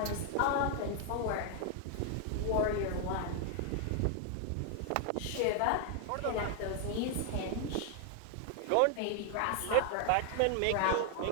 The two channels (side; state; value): both; different; correlation 0.00